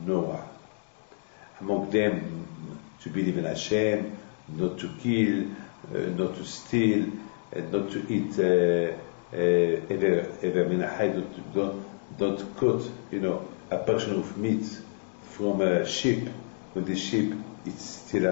Noah. Among them, to believe in Hashem, not to kill, not to steal, not to eat don't cut, a portion of meat from a sheep when the sheep is still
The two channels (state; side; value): silent; right; digital silence